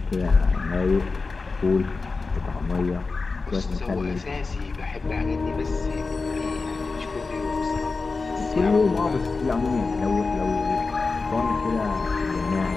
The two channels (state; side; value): quieter; right; 4.1 dB